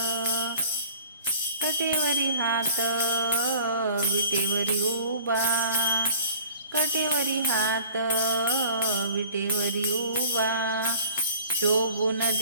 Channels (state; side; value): inverted; both; correlation -0.45